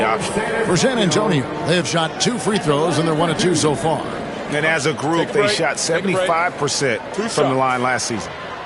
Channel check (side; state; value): both; identical; correlation 1.00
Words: option. For San Antonio, they have shot 2 free throws, and they're 1 of 2 so far. And as a group, they shot 75% from the line last season.